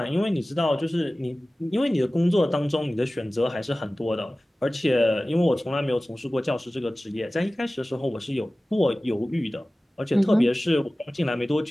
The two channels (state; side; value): normal; both; correlation 0.97